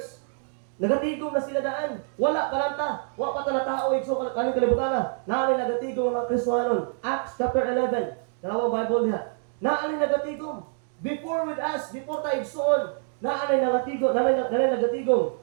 nagatigom na sila daan. Wala kalanta. Wala pa tala tao. So kaning kalibutan na. Naalay nagatigom ang mga Kristohanon. Acts chapter 11. Dalawang Bible niya. Naalay nagatigom. Before with us, before tayo igsoon, naalay nagatigom.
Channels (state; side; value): silent; left; 61 dB below the other